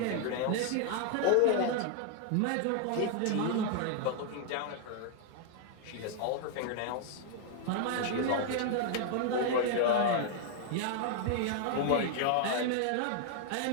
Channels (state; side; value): different; both; correlation 0.00